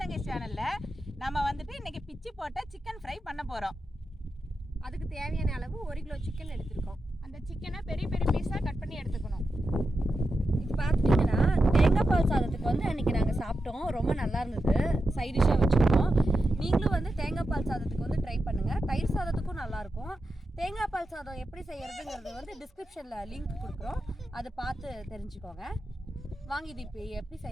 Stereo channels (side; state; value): both; normal; correlation 0.89